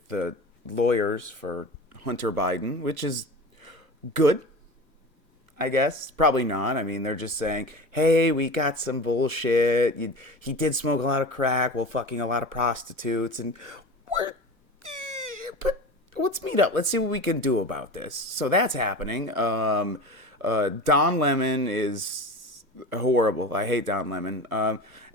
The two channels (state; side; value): late; right; 1.4 ms